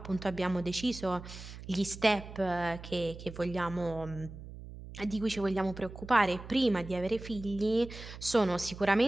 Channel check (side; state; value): right; noise; hum, 13 dB below the sound